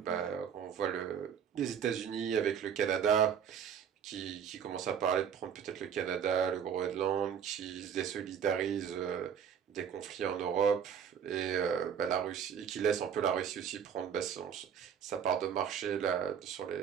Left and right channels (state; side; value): quieter; left; 8.0 dB